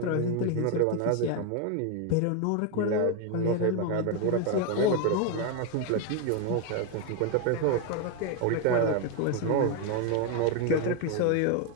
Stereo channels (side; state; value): both; different; correlation 0.01